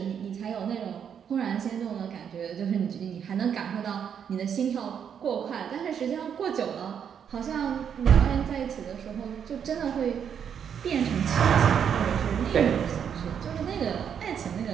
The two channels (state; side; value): quieter; left; 8.0 dB